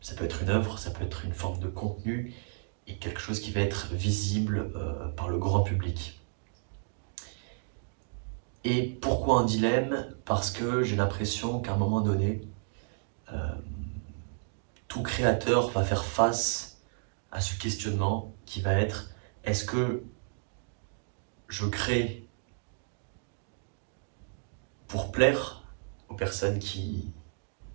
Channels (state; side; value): silent; left; digital silence